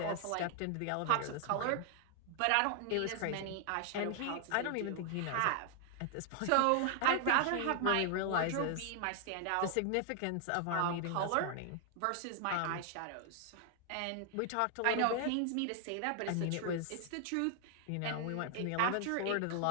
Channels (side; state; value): both; different; correlation 0.00